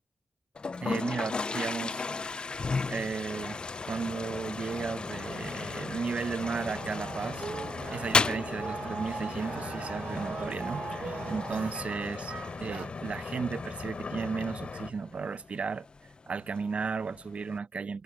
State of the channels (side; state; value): both; normal; correlation 0.76